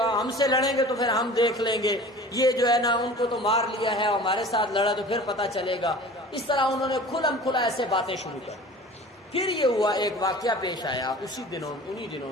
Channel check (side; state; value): both; normal; correlation 0.42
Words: ہم سے لڑیں گے تو پھر ہم دیکھ لیں گے، یہ جو ہے نا ان کو تو مار لیا ہے، ہمارے ساتھ لڑا تو پھر پتہ چلے گا۔ اس طرح انہوں نے کھلم کھلا ایسے باتیں شروع کر۔ پھر یہ ہوا، ایک واقعہ پیش آیا انہی